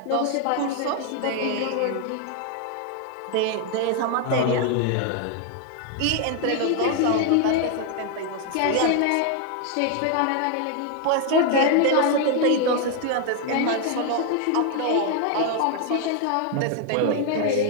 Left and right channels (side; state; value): both; different; correlation 0.01